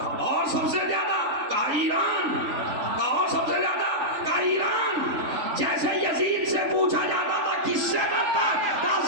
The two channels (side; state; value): left; late; 3.5 ms